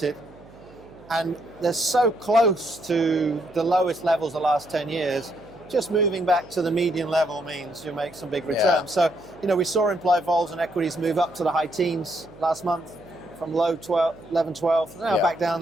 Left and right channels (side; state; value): right; noise; hum, 23 dB below the sound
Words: And they're so close to the lowest levels the last 10 years, just moving back to the median level means you make some big returns. So, we saw implied vols and equities move up to the high teens last month from low 11, 12, now back down